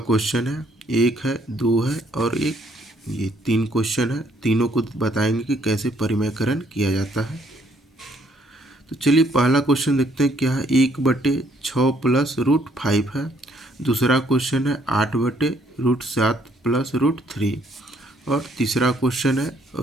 है, एक है, दो है और एक। ये 3 क्वेश्चन है, तीनों को बताएंगे कि कैसे परिमेयकरण किया जाता है। तो चलिए पहला क्वेश्चन देखते हैं क्या है। 1/6 प्लस रूट 5 है। दूसरा क्वेश्चन है 8/√7 प्लस √3। और तीसरा क्वेश्चन है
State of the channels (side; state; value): both; normal; correlation 0.67